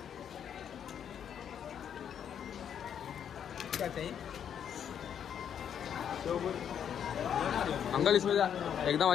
क्या चाहिए? अंकल इसमें एकदम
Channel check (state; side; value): quieter; right; 8.7 dB